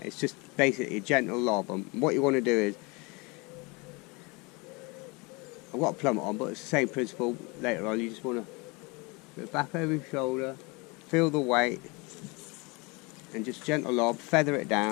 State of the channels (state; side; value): quieter; right; 27.7 dB